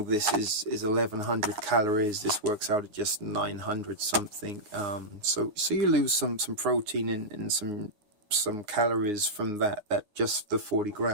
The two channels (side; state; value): left; late; 9.6 ms